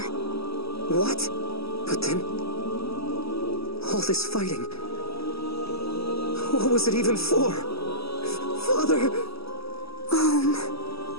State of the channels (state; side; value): late; right; 0.76 ms